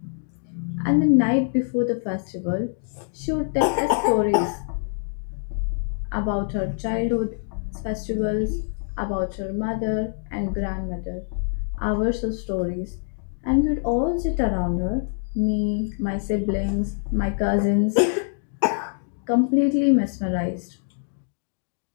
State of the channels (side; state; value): right; silent; digital silence